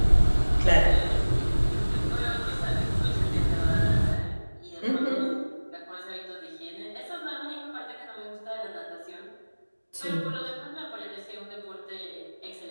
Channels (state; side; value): inverted; both; correlation -1.00